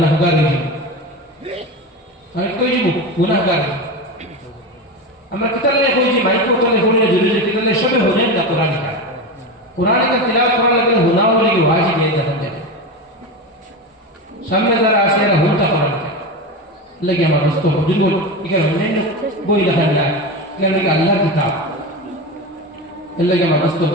হয়ে যাব আমি কই যাব গুনাহগার আমরা কিতালে কই যে মাইক কোতলে হলে জরুরি কিতালে সবে হলেন না কোরআন কা তিলাওয়াত করা লাগলে হুনাও লাগি ওয়াজিব এই দেখেন সামনে যারা আছে এরা হুনতা কোরআন লাগি আমার দোস্ত হুজুর বল এখানে অন্যান্য বই লেখা না এখানে আল্লাহর কিতাব এলাকে আমার দোস্ত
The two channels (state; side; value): normal; both; correlation 0.21